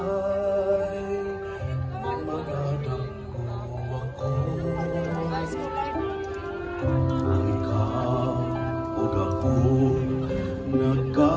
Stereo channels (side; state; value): both; identical; correlation 1.00